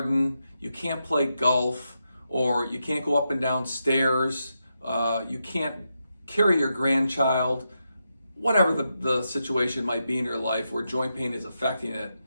you can't play golf, or you can't go up and down stairs, you can't carry your grandchild, whatever the situation might be in your life where joint pain is affecting it,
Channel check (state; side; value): inverted; both; correlation -0.86